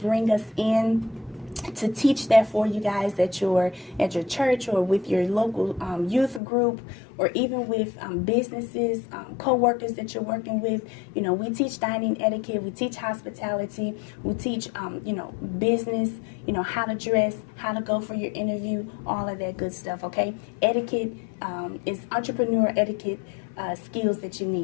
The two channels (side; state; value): right; drops out; at 6.4 s